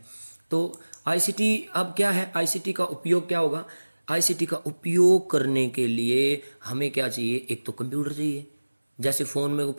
तो आईसीटी अब क्या है, आईसीटी का उपयोग क्या होगा। आईसीटी का उपयोग करने के लिए हमें क्या चाहिए, एक तो कंप्यूटर चाहिए। जैसे फ़ोन में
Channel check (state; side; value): inverted; both; correlation -1.00